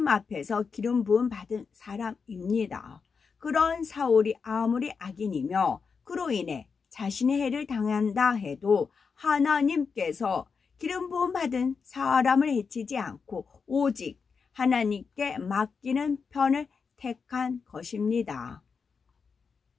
앞에서 기름 부음 받은 사람입니다. 그런 사울이 아무리 악인이며 그로 인해 자신의 해를 당한다 해도 하나님께서 기름 부음 받은 사람을 해치지 않고 오직 하나님께 맡기는 편을 택한 것입니다.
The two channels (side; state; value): right; quieter; 5.5 dB